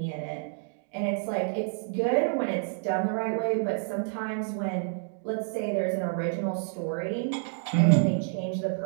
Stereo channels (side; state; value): left; silent; digital silence